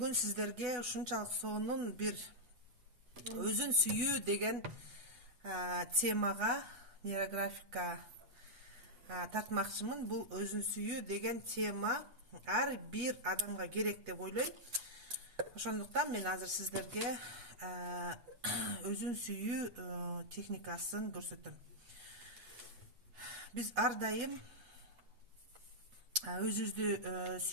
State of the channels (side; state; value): left; late; 8.1 ms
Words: сиздерге ушунчалык сонун бир өзүн сүйүү деген темага нейрографика тартмакчымын. Бул өзүн сүйүү деген тема ар бир адамга керек деп ойлойм. Ошондуктан мен азыр сиздерге өзүн сүйүү техникасын көрсөтөм. Биз ар дайым өзүбүздү